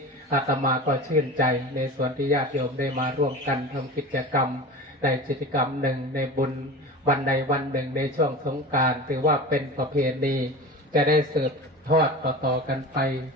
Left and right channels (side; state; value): both; normal; correlation 0.32